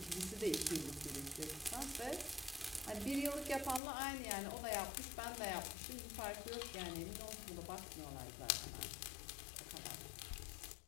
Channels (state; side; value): drops out; right; at 3.8 s